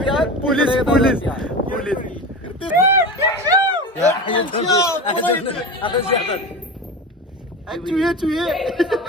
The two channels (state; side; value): normal; both; correlation 0.27